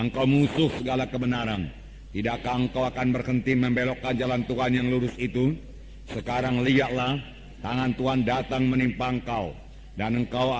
musuh segala kebenaran. Tidakkah engkau akan berhenti membelokkan jalan Tuhan yang lurus itu? Sekarang lihatlah, tangan Tuhan datang menimpa engkau, dan engkau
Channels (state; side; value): identical; both; correlation 1.00